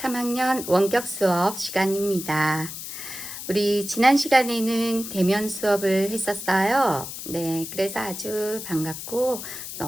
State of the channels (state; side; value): noise; left; hiss, 9 dB below the sound